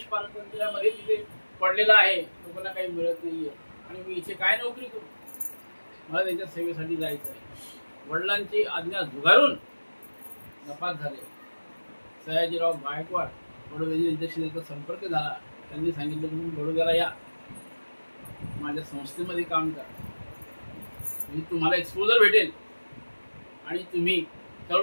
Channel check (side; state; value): both; inverted; correlation -1.00